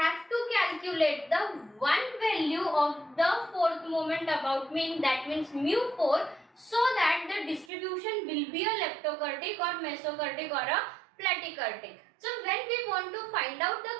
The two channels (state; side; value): drops out; left; at 7.7 s